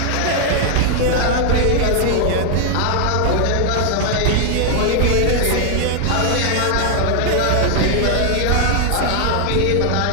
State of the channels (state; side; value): different; both; correlation 0.00